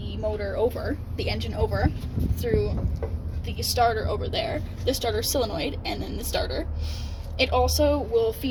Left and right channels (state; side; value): identical; both; correlation 1.00